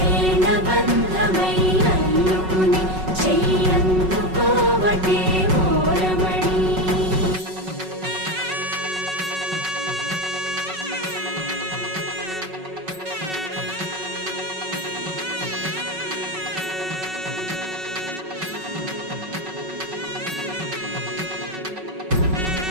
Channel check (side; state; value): left; late; 5.4 ms